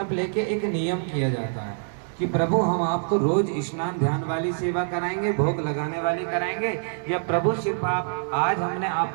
लेके एक नियम किया जाता है कि प्रभु हम आपको रोज स्नान ध्यान वाली सेवा कराएंगे, भोग लगाने वाली कराएंगे, या प्रभु सिर्फ आप आज हमने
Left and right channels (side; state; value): left; silent; 61 dB below the other